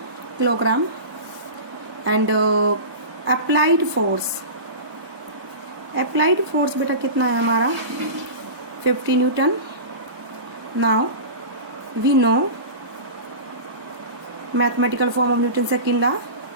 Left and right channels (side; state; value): left; late; 1.1 ms